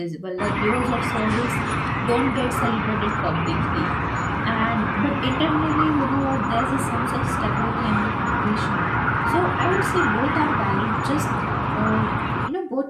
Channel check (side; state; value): both; identical; correlation 1.00